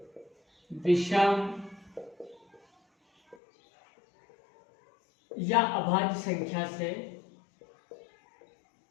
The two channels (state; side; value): drops out; right; at 3.4 s